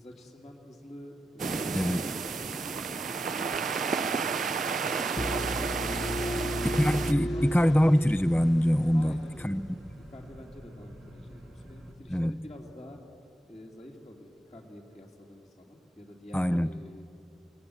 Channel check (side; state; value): both; normal; correlation 0.89